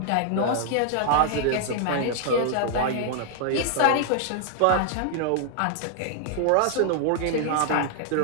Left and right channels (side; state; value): both; different; correlation -0.01